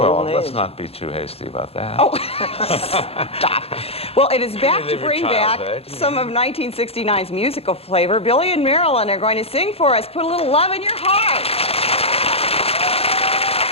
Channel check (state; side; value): late; right; 0.29 ms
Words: Golden let's age. not be too hasty about that. Oh, stop. Well, it is back to Relive your bring back childhood. some of 1969's musical flavor. Billy and Marilyn are going to sing for us. Put a little love in your heart.